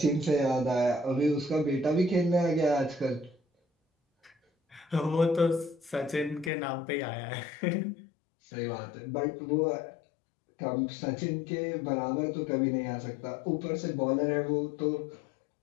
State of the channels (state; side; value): drops out; right; at 6.5 s